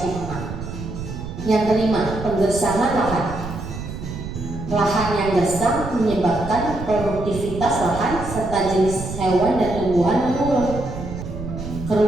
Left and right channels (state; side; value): noise; right; rumble, 8 dB below the sound